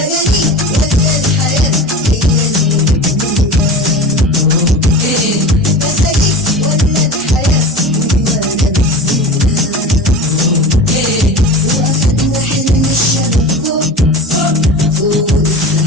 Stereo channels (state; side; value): normal; both; correlation 0.33